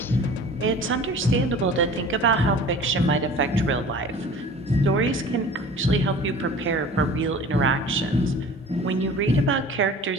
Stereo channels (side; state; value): both; normal; correlation 0.43